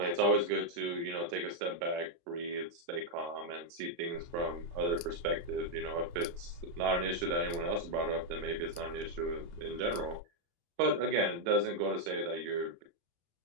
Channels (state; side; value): late; left; 35 ms